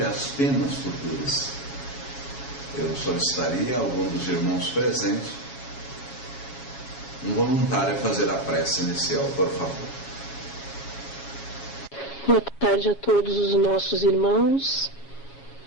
as penas futuras. Eu solicitaria a algum dos irmãos presentes, um voluntário, a fazer a prece inicial, por favor. Boa tarde a todos os nossos irmãos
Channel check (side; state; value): right; late; 7.3 ms